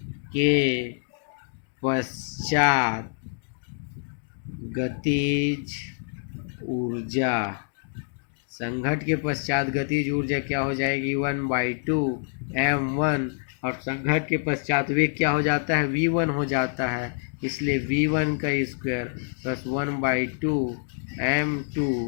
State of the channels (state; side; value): silent; right; digital silence